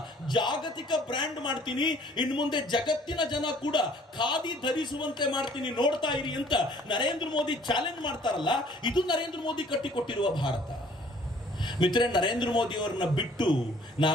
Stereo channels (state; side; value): normal; both; correlation 0.56